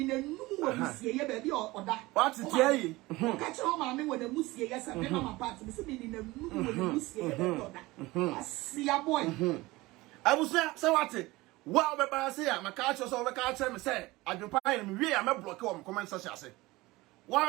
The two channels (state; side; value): quieter; left; 20.4 dB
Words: in a new baby or that. What's it? Yeah, catch your mammy when the Musia, yes, and then my party is in a new Musia. I see a boy. I was there, so what's it? Well, but I say, I'm a catcher, so I can't tell me, say, I can find me, I'm a block on comment, such as it.